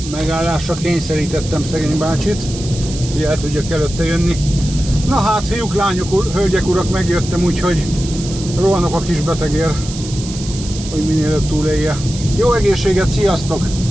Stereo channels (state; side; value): noise; right; hiss, 12 dB below the sound